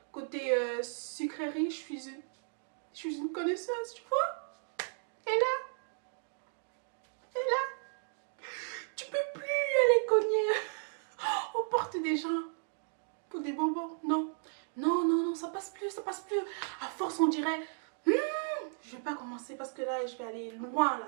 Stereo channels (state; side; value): silent; left; digital silence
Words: côté sucrerie, je suis une connaisseuse, tu vois. Et là, tu peux plus aller cogner aux portes des gens pour des bonbons, non. Non, non, non, ça passe plus, ça passe plus. À force, on dirait, je vais pas commencer parce que là, je vais aller loin, là,